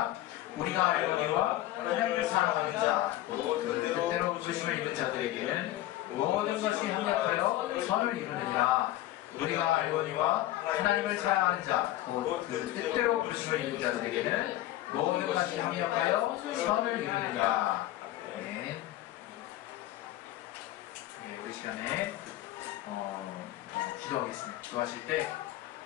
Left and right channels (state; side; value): quieter; right; 15.0 dB